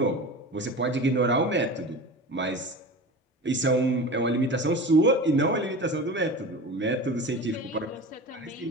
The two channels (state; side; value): normal; both; correlation 0.33